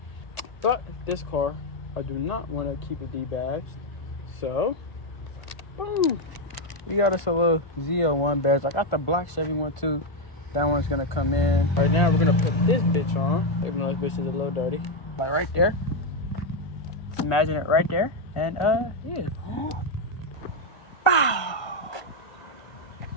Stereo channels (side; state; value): right; late; 1.5 ms